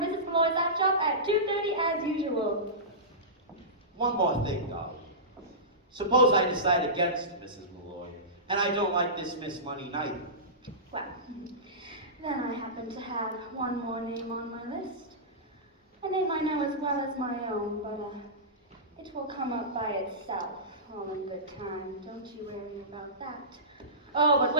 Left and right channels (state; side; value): normal; both; correlation -0.19